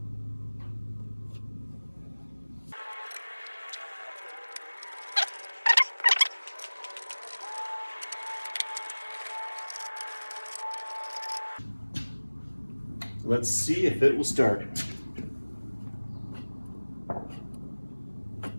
Let's see if it will start.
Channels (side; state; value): both; inverted; correlation -1.00